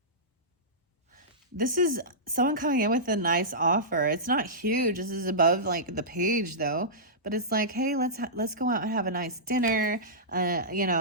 This is someone coming in with a nice offer. It's not huge. This is above like the page though. But it's like, hey, let's go out and have a nice dinner.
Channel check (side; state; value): both; normal; correlation -0.17